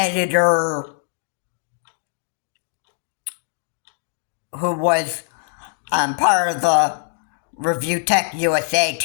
who was part of the Review Tech USA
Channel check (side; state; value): right; silent; digital silence